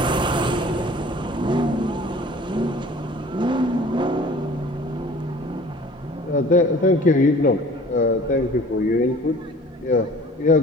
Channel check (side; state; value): both; normal; correlation 0.48